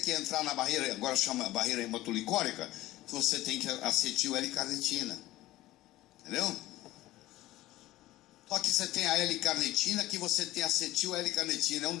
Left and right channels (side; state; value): right; quieter; 16.5 dB